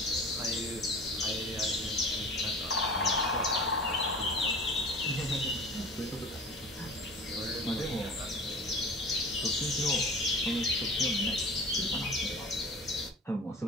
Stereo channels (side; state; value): both; normal; correlation 0.39